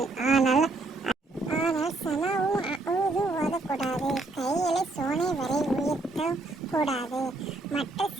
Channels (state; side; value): quieter; left; 3.2 dB